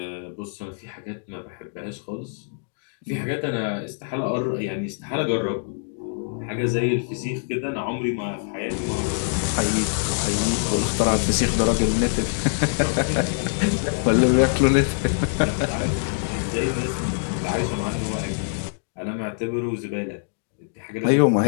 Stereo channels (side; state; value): right; silent; digital silence